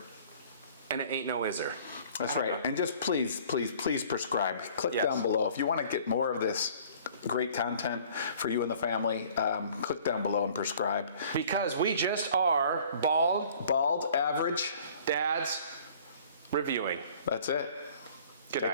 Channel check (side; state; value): both; inverted; correlation -0.52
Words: and it ain't no iser. that's right. And just please prescribe. Click Yes. down below. If you want to get more of this great content for you and the family, click down below and prescribe. Because we just are Bald, average, dads reviewing. that's it. Good Take